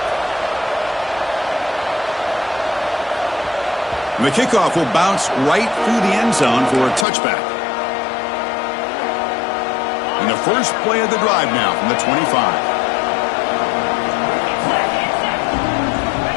And the kickoff will bounce right through the end zone for a touchback. And the first play of the drive now from the 25.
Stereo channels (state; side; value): drops out; right; at 7.1 s